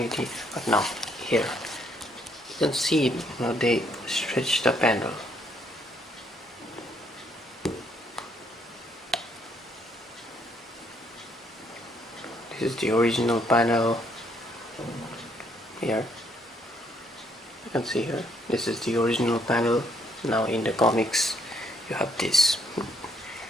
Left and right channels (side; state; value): both; normal; correlation 0.69